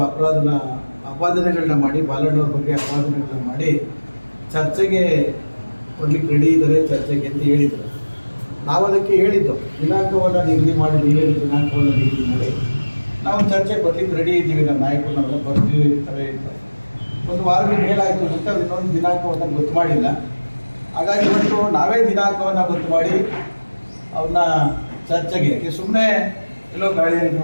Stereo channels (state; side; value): inverted; both; correlation -1.00